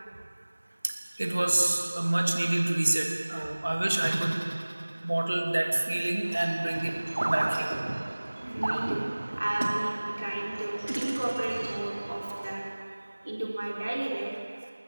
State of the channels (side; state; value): both; inverted; correlation -1.00